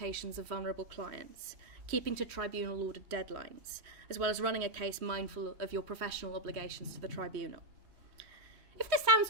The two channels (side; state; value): left; late; 3.1 ms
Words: of vulnerable clients, keeping to tribunal-ordered deadlines, as well as running a case mindful of your professional obligations to the tribunal. If this sounds